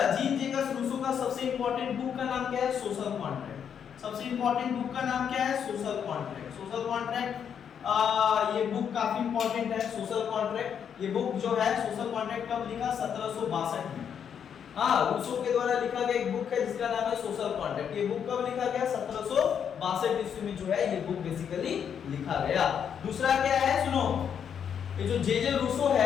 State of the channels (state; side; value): quieter; right; 8.0 dB